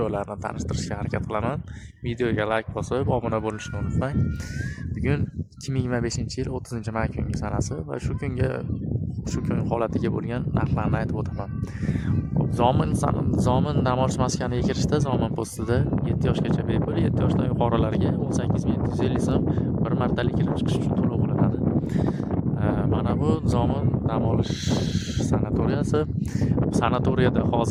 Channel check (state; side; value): identical; both; correlation 1.00